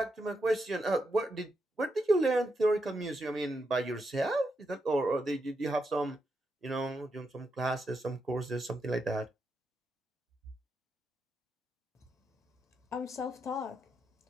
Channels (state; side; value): normal; both; correlation 0.83